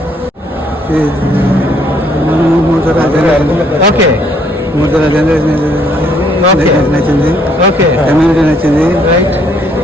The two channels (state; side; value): normal; both; correlation 0.67